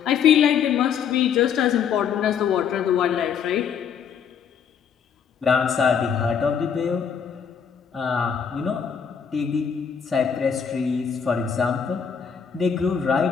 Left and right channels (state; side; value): quieter; right; 7.3 dB